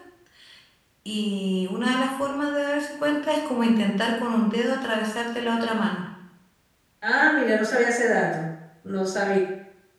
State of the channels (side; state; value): both; identical; correlation 1.00